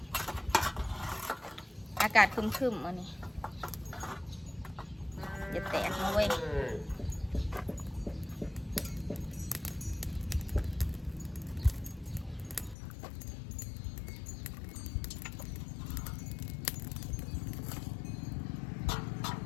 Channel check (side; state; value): right; drops out; at 12.8 s